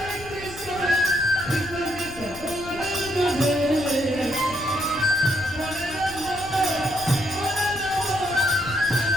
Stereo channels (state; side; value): noise; left; rumble, 16 dB below the sound